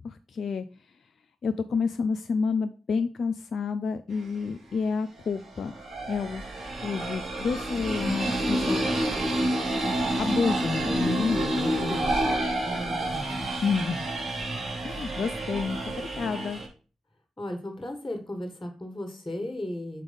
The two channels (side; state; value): both; normal; correlation 0.86